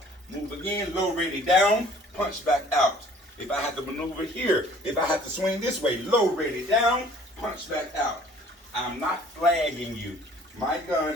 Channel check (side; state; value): both; normal; correlation 0.54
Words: Move again, low ready down, punch back out. If I have to maneuver here, if I have to swing this way, low ready down, punch back out. I'm not flagging you. My gun